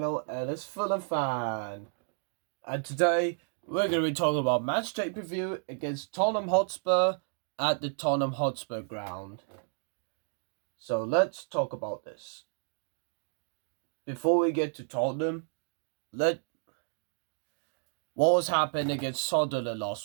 Ellis Fulham Fan, and today we're going to be talking about Matchday preview against Tottenham Hotspur at the Tottenham Hotspur ground. So let's talk about this. Before we get to Tottenham, what was happening against Sunderland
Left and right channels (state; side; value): silent; left; 57 dB below the other